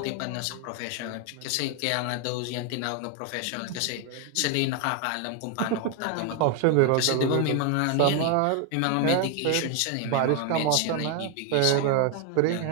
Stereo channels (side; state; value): both; different; correlation 0.00